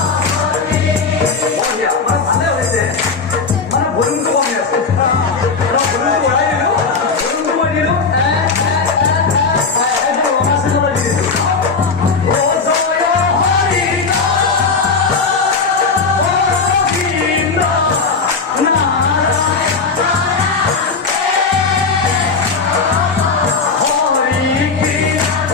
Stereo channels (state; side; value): quieter; right; 4.7 dB